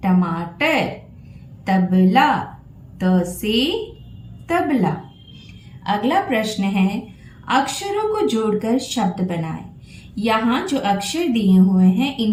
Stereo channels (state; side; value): identical; both; correlation 1.00